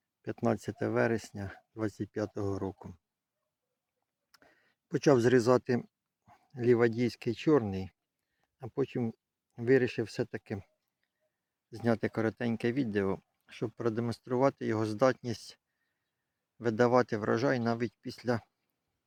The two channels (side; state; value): both; identical; correlation 1.00